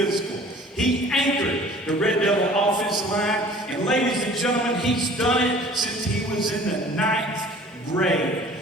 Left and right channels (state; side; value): normal; both; correlation 0.49